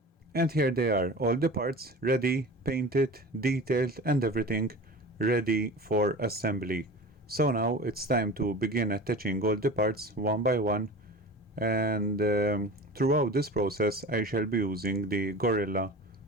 And here they are, all the parts ready, painted, detailed, and everything ready for assembly. So now it's time to begin attaching all the parts one by one, and throughout this process I shall be using the Gorilla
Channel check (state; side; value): normal; both; correlation 0.35